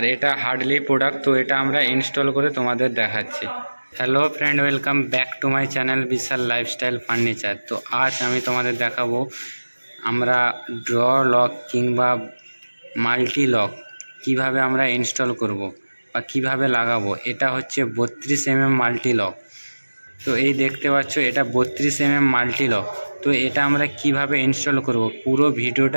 এটা হার্ডলি প্রোডাক্ট, তো এটা আমরা ইনস্টল করে তোমাদের দেখাচ্ছি। Hello friend, welcome back to my channel Vishal lifestyle furniture. তো আজ আমি তোমাদের দেখাবো আমরা ড্র লক কিংবা মাল্টি লক কীভাবে আমরা ইনস্টল করব বা কিভাবে লাগাবো। এটা হচ্ছে 32 mm মাল্টি লক। তো এই দেখতে পাচ্ছ, এটা 32 mm মাল্টি লক। তো এটা আমরা কিভাবে ইনস্টল করব পুরো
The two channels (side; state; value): both; inverted; correlation -1.00